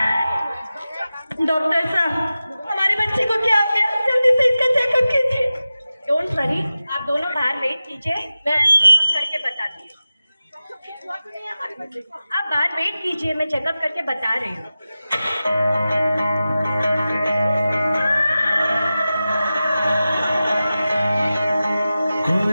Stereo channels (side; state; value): both; inverted; correlation -0.95